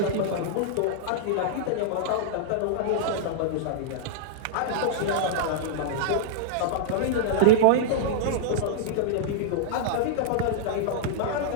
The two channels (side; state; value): both; different; correlation -0.01